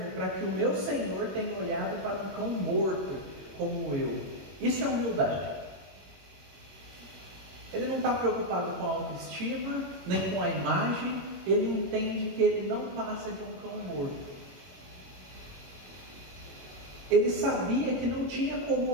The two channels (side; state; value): left; late; 22 ms